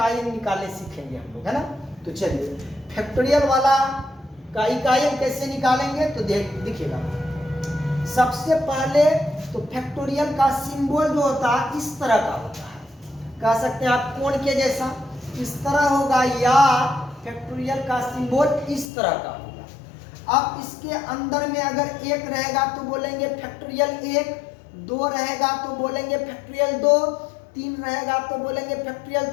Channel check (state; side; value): drops out; right; at 18.9 s